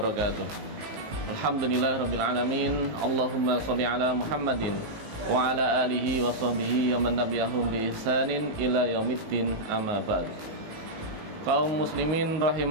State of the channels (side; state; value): left; late; 19 ms